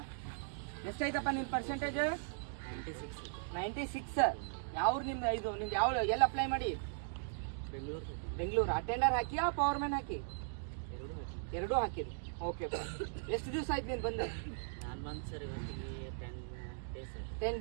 ಎಷ್ಟೈತಪ್ಪ ನಿನ್ನ ಪರ್ಸೆಂಟೇಜ್? 96. ಯಾವ ನಿಮ್ದು? ಇದು ನಿಮ್ದು ಯಾವ ಎಲ್ಲಿ ಅಪ್ಲೈ ಮಾಡಿ? ಬೆಂಗಳೂರು. ಅಟೆಂಡರ್ ಹಾಕಿಯಾ ಪವರ್ ಮ್ಯಾನ್ ಹಾಕಿ? ಎರಡೂ ಹಾಕಿರಿ. ಓಕೆ. ಎಷ್ಟು ದಿವಸ ಆಯ್ತು ನೀನು ಬಂದು? 10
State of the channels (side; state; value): left; silent; digital silence